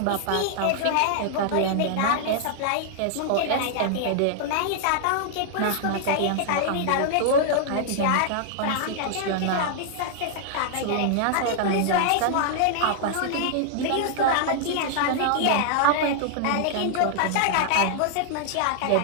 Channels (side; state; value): both; different; correlation -0.01